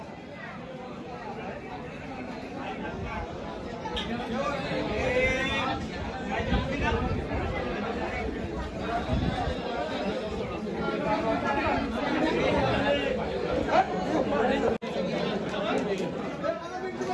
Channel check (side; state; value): both; identical; correlation 1.00